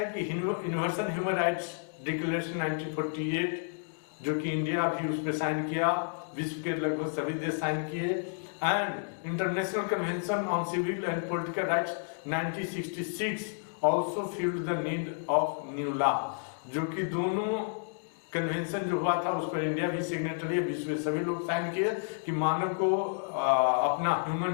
कि यूनिवर्सल ह्यूमन राइट्स डिक्लेरेशन 1948, जो कि इंडिया भी उस पर साइन किया, विश्व के लगभग सभी देश साइन किए, and international convention on civil and political rights 1966 also felt the need of new law. जो कि दोनों कन्वेंशन जो हुआ था उस पर इंडिया भी सिग्नेटरी है, विश्व में सभी लोग साइन किए कि मानव को अपना ह्यूमन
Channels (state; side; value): silent; right; digital silence